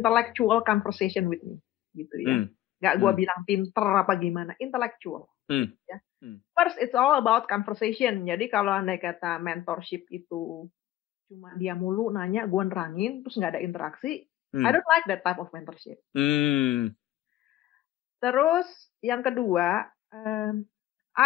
conversation with me, gitu ya. Nggak gue bilang pinter apa gimana, intellectual. Ya. First, it's all about conversation. Jadi kalau andai kata mentorship itu cuma dia mulu nanya, gue nerangin, terus nggak ada interaksi, I don't like that type of mentorship. Terus yang kedua,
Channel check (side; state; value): right; quieter; 13.8 dB